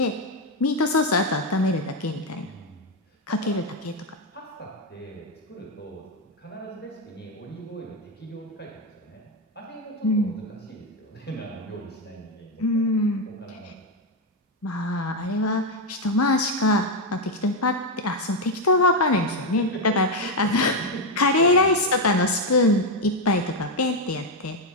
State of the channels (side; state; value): both; normal; correlation 0.05